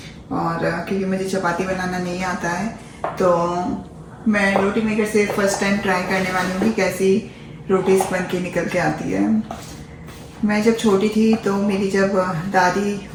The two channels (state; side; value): identical; both; correlation 1.00